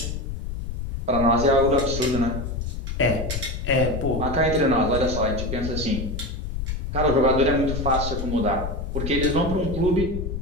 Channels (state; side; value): noise; left; rumble, 4 dB below the sound